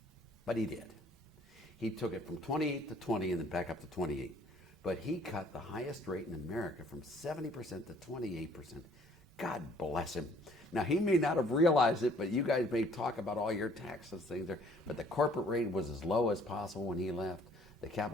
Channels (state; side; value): normal; both; correlation 0.59